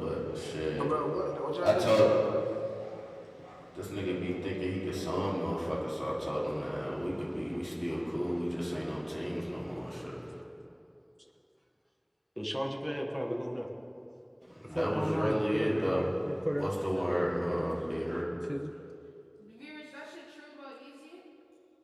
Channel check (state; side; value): identical; both; correlation 1.00